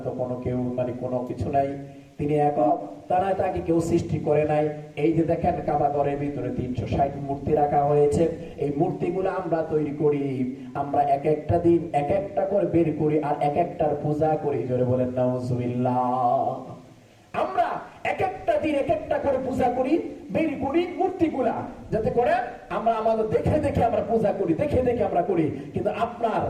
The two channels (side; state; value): both; identical; correlation 1.00